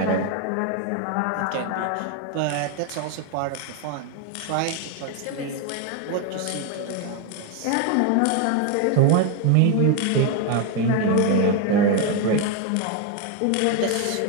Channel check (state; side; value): different; both; correlation 0.02